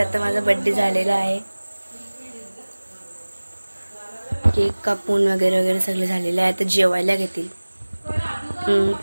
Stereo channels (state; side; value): inverted; both; correlation -1.00